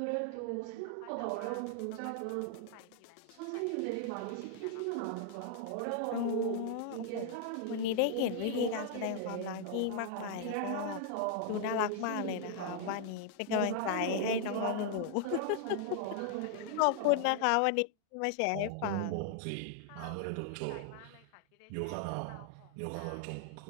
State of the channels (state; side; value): different; both; correlation 0.00